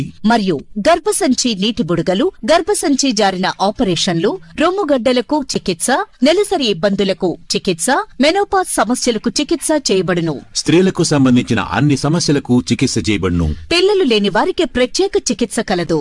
మరియు గర్భసంచి నీటి బుడగలు, గర్భసంచి జారిన ఆపరేషన్లు, రొమ్ముగడ్డలకు చికిత్స, నెలసరి ఇబ్బందులకు చికిత్స, మెనోపాజ్ సమస్యలకు చికిత్స చేయబడును. స్త్రీలకు సంబంధించిన అన్ని సమస్యలకు చికిత్స చేయబడును. పిల్లలు లేని వారికి ప్రత్యేక చికిత్స కలదు.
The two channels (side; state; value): both; identical; correlation 1.00